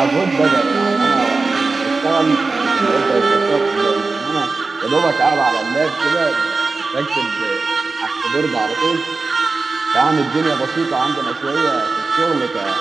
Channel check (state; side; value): quieter; left; 3.9 dB